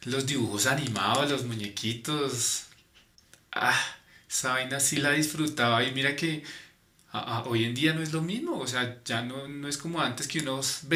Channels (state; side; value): identical; both; correlation 1.00